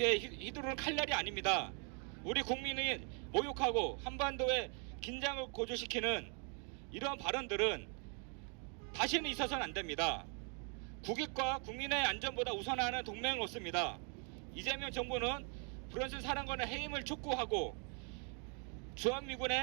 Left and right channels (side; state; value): left; quieter; 39.1 dB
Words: 휘두르는 칼날이 아닙니다. 우리 국민이 모욕하고 한반도의 긴장을 고조시키는 이러한 발언들은 다시는 있어서는 안 됩니다. 국익과 국민의 안전보다 우선하는 동맹은 없습니다. 이재명 정부는 브런슨 사령관의 해임을 촉구하고